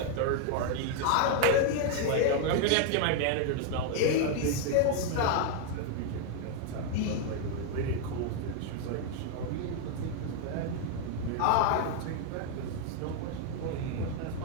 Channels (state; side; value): different; both; correlation 0.00